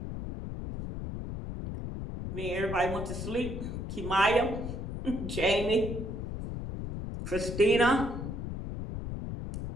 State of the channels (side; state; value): left; noise; rumble, 6 dB below the sound